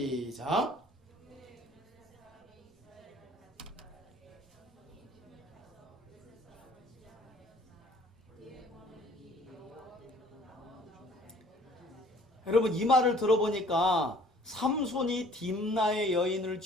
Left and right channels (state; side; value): normal; both; correlation 0.54